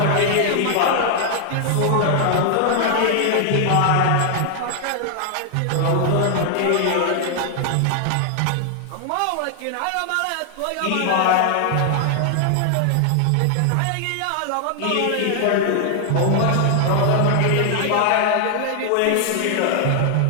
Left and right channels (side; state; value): both; different; correlation 0.00